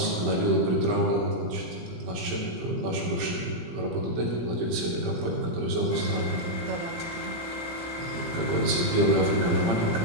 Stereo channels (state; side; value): late; left; 18 ms